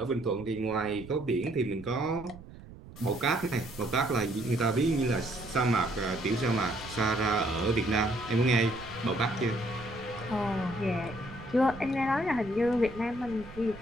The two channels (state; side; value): noise; right; rumble, 16 dB below the sound